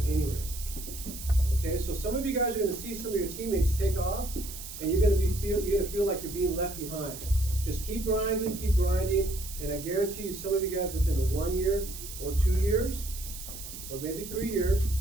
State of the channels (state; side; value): noise; right; hiss, 11 dB below the sound